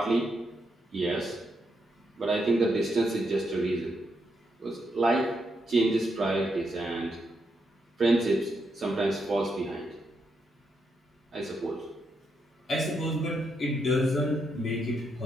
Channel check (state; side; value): normal; both; correlation 0.80